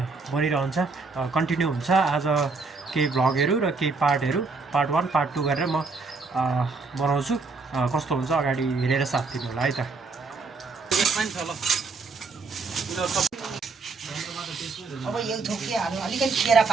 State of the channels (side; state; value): left; quieter; 4.2 dB